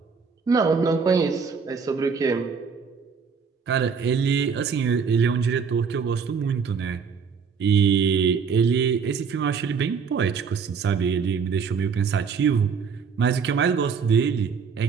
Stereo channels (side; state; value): left; quieter; 5.9 dB